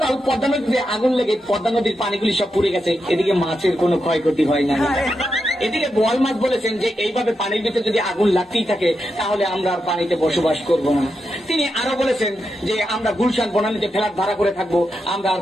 পদ্মা নদীতে আগুন লেগে পদ্মা নদীর পানিগুলি সব পুড়ে গেছে, এদিকে মাছের কোনো ক্ষয়ক্ষতি হয় না। এদিকে বোয়াল মাছ বলেছেন যে এইভাবে পানির ভিতরে যদি আগুন লাগতেই থাকে তাহলে আমরা আর পানিতে বসবাস করব না। তিনি আরো বলেছেন যে আমরা গুলশান বনানীতে ফ্ল্যাট ভাড়া করে থাকবো, আমরা আর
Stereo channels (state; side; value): normal; both; correlation 0.86